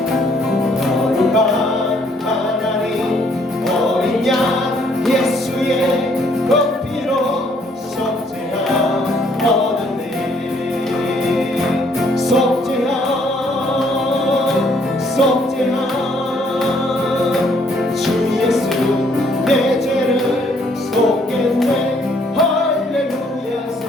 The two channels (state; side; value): normal; both; correlation 0.65